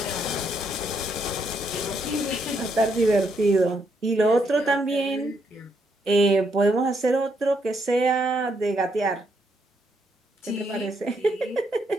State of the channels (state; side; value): normal; both; correlation 0.76